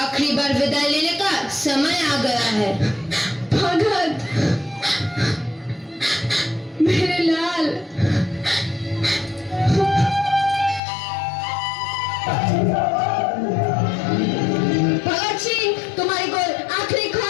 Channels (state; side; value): drops out; right; at 10.8 s